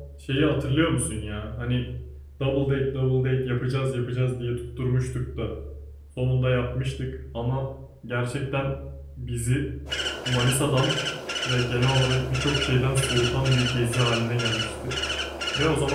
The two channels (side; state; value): both; identical; correlation 1.00